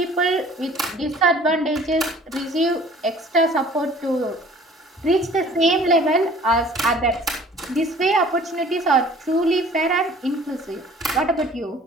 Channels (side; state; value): both; normal; correlation 0.51